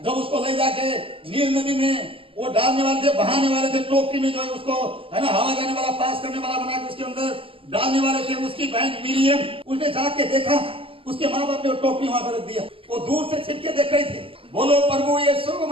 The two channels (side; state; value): left; late; 0.26 ms